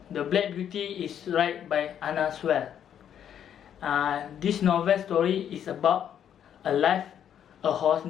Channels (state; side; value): quieter; right; 9.3 dB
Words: the Black Beauty is written by Anna Sewell. This novel story is about a horse